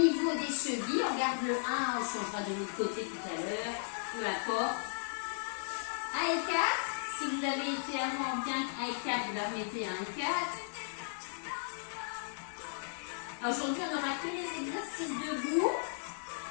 des chevilles. On garde le 1, on changera de l'autre côté tout à l'heure, peu importe. 1 et 4, si vous avez été avant bien 1 et 4, vous la remettez à 1 et 4. Aujourd'hui, on n'aura que les exercices debout.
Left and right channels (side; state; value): right; silent; digital silence